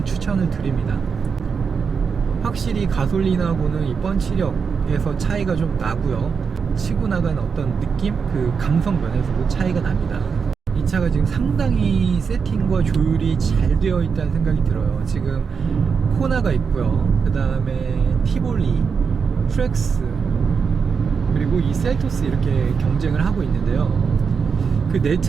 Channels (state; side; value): quieter; left; 5.9 dB